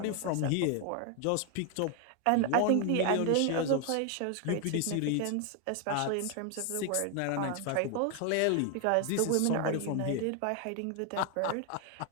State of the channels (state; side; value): different; both; correlation 0.01